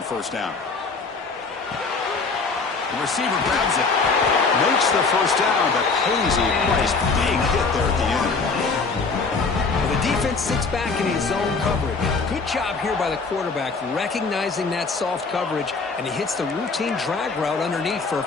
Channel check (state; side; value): quieter; right; 4.4 dB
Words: first down. The receiver grabs it. Makes the first down, but pays a price. Big hit there at the end. Well, the defense sits back in his zone coverage. Good job here by the quarterback, recognizing that soft coverage, and he hits the routine drag route underneath for a